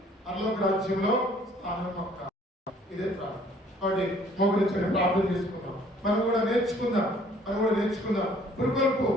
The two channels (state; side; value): normal; both; correlation 0.58